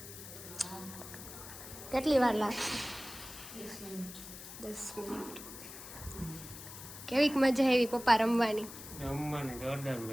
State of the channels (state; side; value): noise; left; hiss, 13 dB below the sound